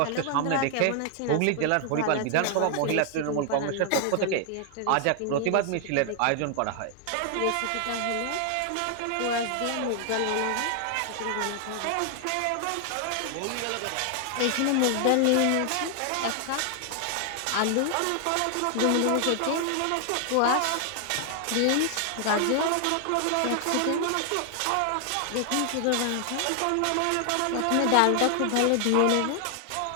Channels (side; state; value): both; different; correlation 0.00